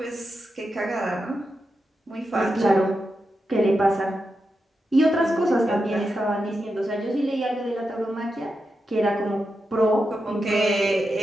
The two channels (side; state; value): both; normal; correlation 0.88